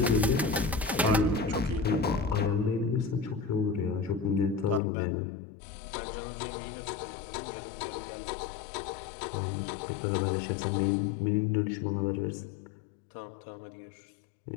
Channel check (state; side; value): drops out; right; at 4.8 s